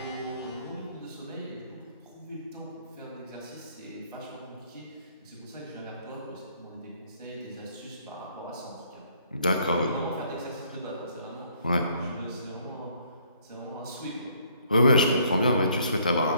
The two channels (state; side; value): inverted; both; correlation -0.64